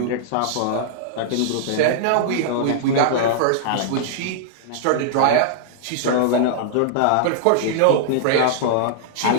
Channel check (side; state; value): both; different; correlation -0.01